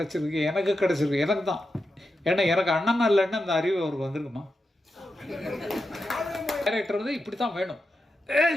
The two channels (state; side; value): normal; both; correlation 0.88